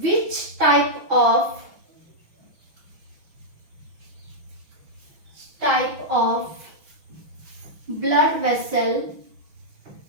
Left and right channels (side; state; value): left; late; 6.0 ms